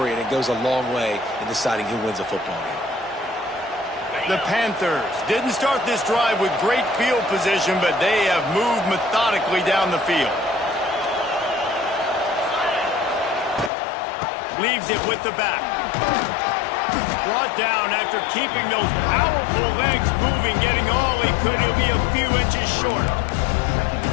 and it goes a long way in deciding who wins a football game. The Panthers didn't start this drive with great field position, but they have moved methodically down the field. Leaves it with the back. Brought down after keeping those powerful legs moving, getting all he could. He'll be a few inches short.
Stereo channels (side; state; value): right; drops out; at 13.7 s